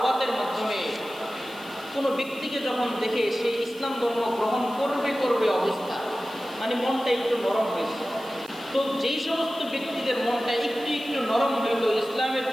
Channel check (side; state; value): right; noise; hiss, 22 dB below the sound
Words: মাধ্যমে কোনো ব্যক্তিকে যখন দেখে সে ইসলাম ধর্ম গ্রহণ করবে অবস্থা, মানে মনটা একটু নরম হয়েছে। তো যেই সমস্ত ব্যক্তিদের মনটা একটু নরম হইতো, ইসলামের